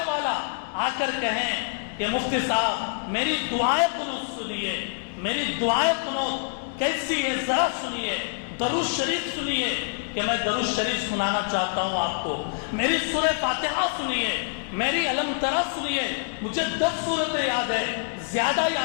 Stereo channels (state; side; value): silent; right; digital silence